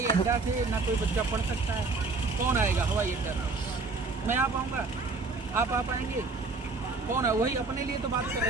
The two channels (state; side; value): quieter; left; 3.8 dB